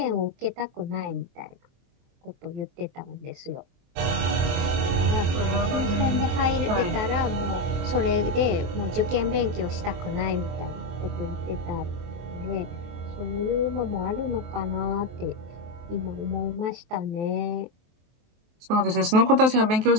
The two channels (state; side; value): late; left; 23 ms